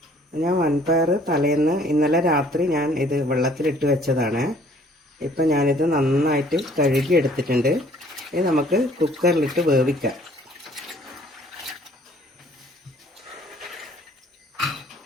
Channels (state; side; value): normal; both; correlation 0.57